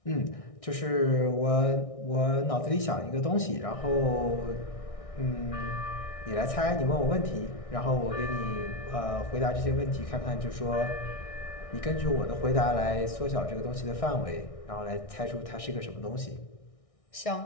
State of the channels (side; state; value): right; late; 1.6 ms